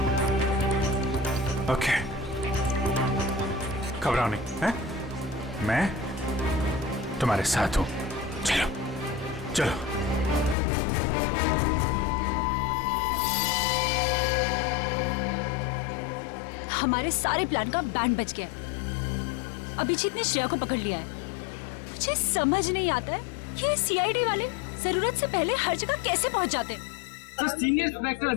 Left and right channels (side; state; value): right; drops out; at 10.6 s